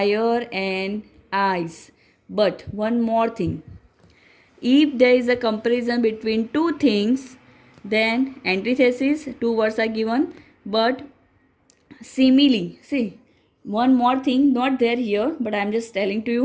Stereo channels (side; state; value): both; identical; correlation 1.00